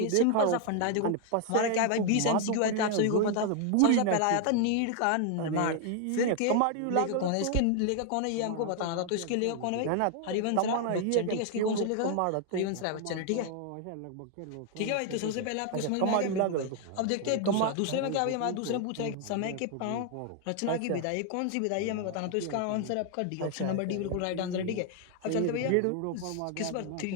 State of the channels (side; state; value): both; different; correlation 0.00